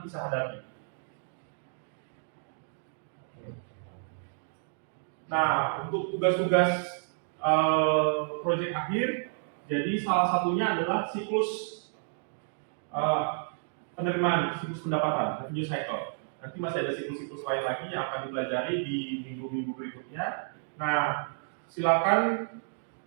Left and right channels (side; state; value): left; silent; digital silence